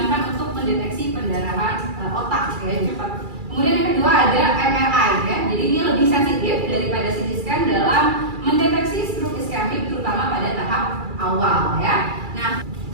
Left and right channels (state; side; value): late; left; 2.3 ms